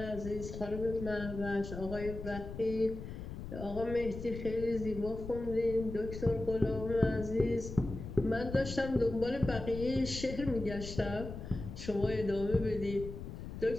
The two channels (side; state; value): left; noise; rumble, 9 dB below the sound